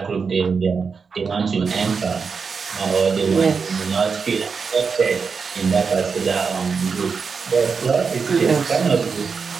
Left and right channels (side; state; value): left; quieter; 5.4 dB